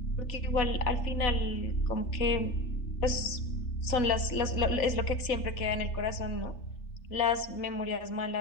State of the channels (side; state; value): right; late; 3.4 ms